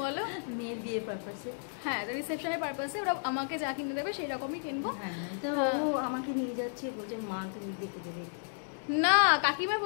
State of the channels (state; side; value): silent; right; digital silence